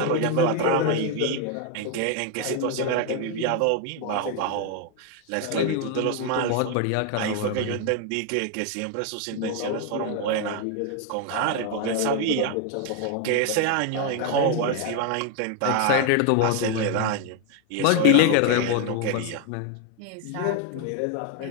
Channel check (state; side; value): different; both; correlation 0.01